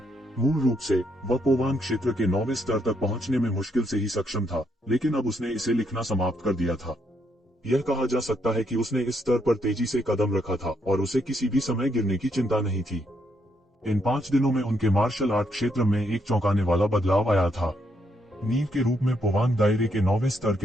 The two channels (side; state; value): both; normal; correlation 0.75